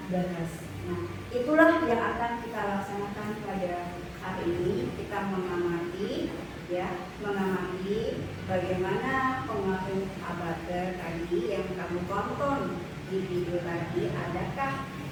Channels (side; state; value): both; identical; correlation 1.00